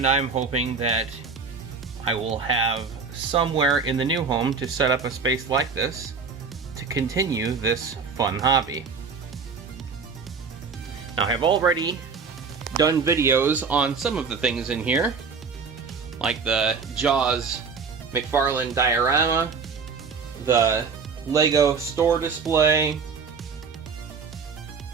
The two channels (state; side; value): quieter; left; 5.3 dB